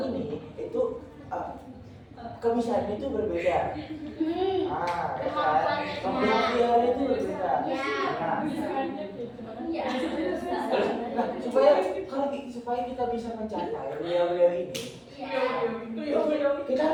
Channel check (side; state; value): both; identical; correlation 1.00